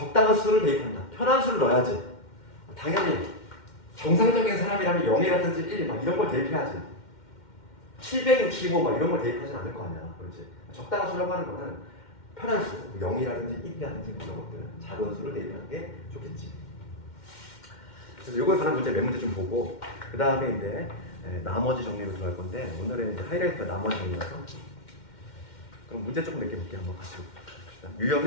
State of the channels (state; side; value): late; right; 2.1 ms